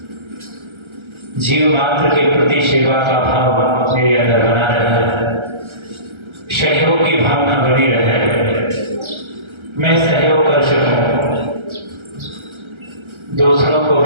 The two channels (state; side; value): late; left; 1.3 ms